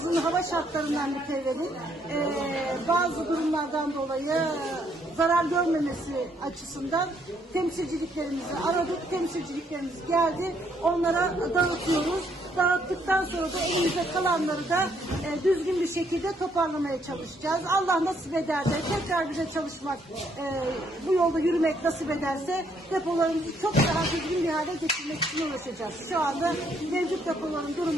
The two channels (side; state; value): both; normal; correlation 0.70